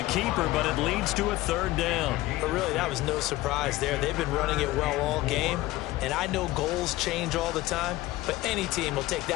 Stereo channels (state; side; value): quieter; right; 17.6 dB